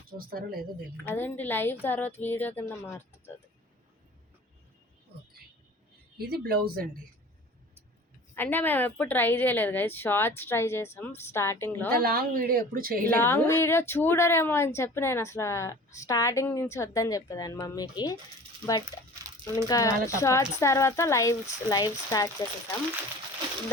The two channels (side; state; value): both; normal; correlation 0.43